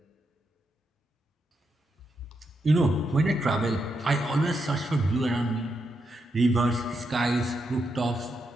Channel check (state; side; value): normal; both; correlation 0.83